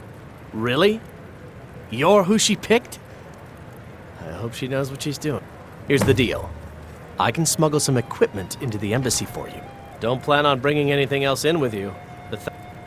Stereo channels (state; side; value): identical; both; correlation 1.00